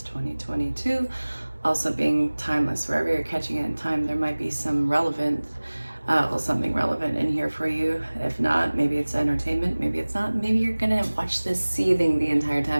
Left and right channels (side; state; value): both; inverted; correlation -1.00